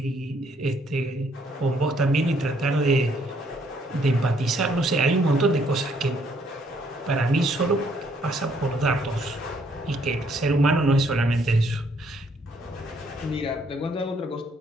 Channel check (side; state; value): both; normal; correlation 0.68